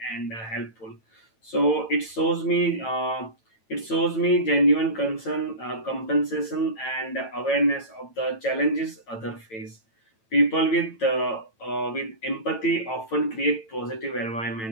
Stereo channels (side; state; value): right; late; 9.0 ms